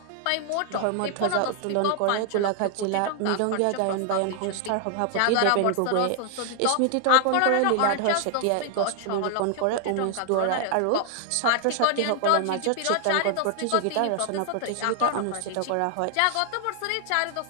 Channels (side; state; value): both; different; correlation 0.00